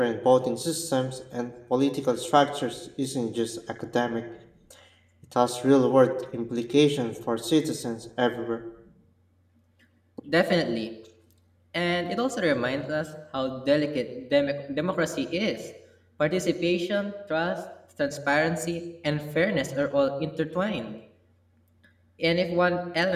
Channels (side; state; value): both; identical; correlation 1.00